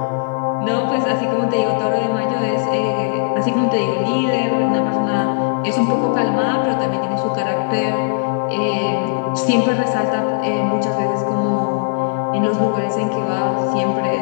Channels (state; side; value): silent; right; digital silence